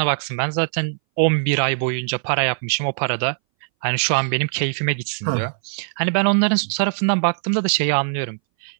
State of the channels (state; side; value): silent; left; 61 dB below the other